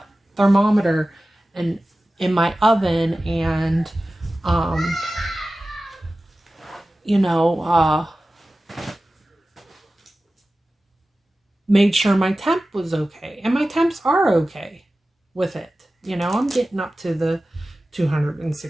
thermometer in my oven, and, you know, made sure my temp was okay. And my temps are okay with it. You know, I'm getting up to the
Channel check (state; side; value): normal; both; correlation 0.95